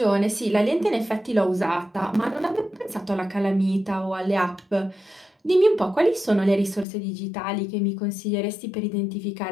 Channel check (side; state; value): right; drops out; at 6.9 s